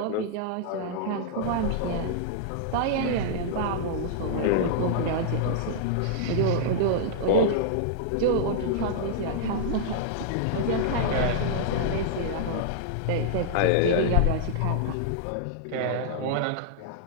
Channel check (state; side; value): different; both; correlation -0.01